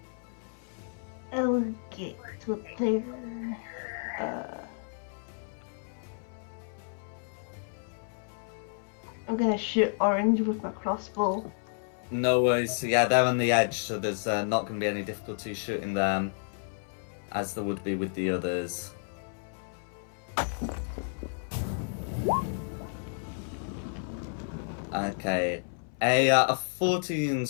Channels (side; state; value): right; silent; 57 dB below the other